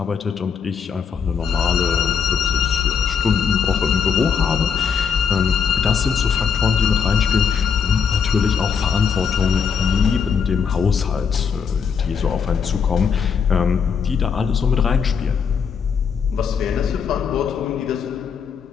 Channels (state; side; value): quieter; right; 6.6 dB